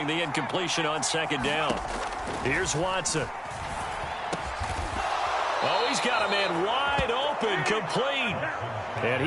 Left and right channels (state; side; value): identical; both; correlation 1.00